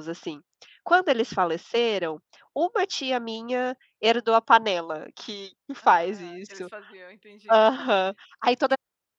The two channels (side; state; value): both; identical; correlation 1.00